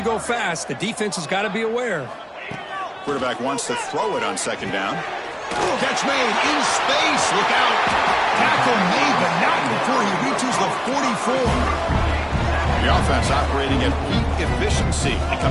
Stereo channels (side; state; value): both; identical; correlation 1.00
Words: go fast. The defense has got to be aware. Quarterback wants to throw it on second down. Catch made in space. Look out. Tackle made, but not before he reaches the 44. The offense operating at peak efficiency. They